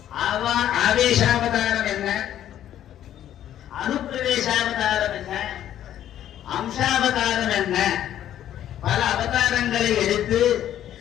ஆவேசாவதாரம் என்ன, அனுப்பிரவேசாவதாரம் என்ன, அம்சாவதாரம் என்ன, பல அவதாரங்களை எடுத்து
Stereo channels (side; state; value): right; quieter; 11.4 dB